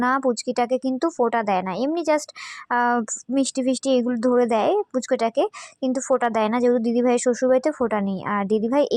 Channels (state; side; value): identical; both; correlation 1.00